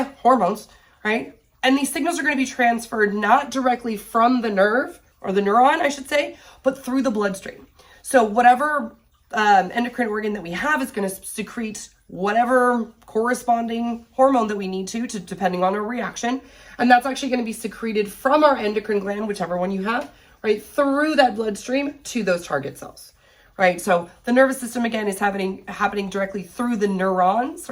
hormones, right? And these signals are going to be transferred not directly from the nerve, or the neuron, I should say, but through the bloodstream. So whatever endocrine organ that we have is going to secrete whatever corresponding hormone that we need to depending on our reaction. And that's actually going to be secreted from our endocrine gland, whichever one you have, right, through that bloodstream to those target cells. Right, so the nervous system, again, is happening directly through the neurons,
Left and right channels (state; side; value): identical; both; correlation 1.00